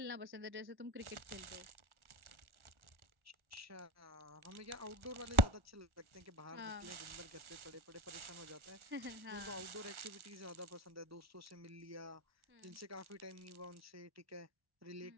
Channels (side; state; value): left; late; 1.4 ms